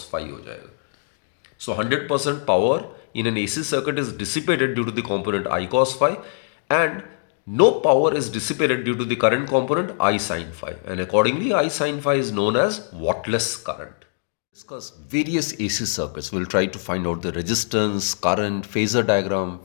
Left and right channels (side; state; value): right; silent; digital silence